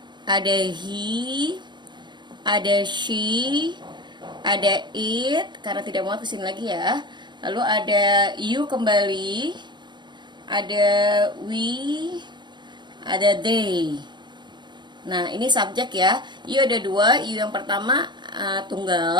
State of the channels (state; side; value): late; left; 0.22 ms